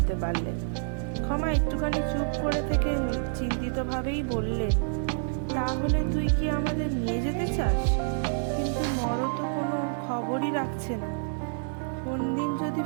পারলেন। ক্ষমা একটুখানি চুপ করে থেকে চিন্তিতভাবেই বললেন, তাহলে তুই কি আমাদের নিয়ে যেতে চাস? কিন্তু নর তো কোনো খবরই রাখছে না। কোন দিন যদি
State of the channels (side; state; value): left; silent; digital silence